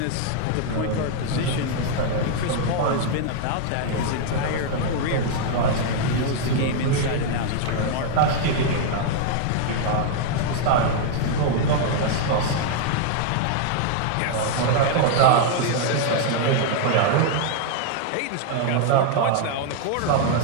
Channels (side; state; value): both; different; correlation 0.00